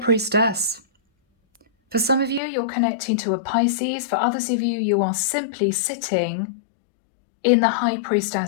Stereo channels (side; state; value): right; drops out; at 2.4 s